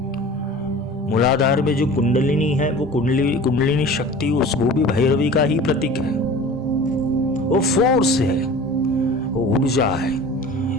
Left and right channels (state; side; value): normal; both; correlation 0.40